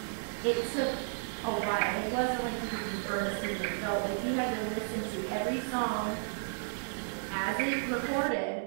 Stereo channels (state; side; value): silent; left; digital silence